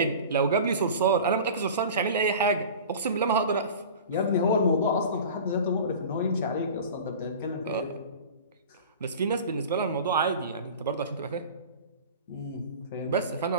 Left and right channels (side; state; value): both; inverted; correlation -0.37